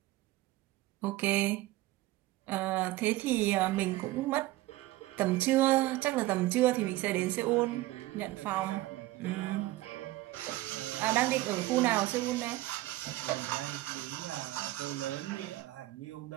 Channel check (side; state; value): left; quieter; 17.6 dB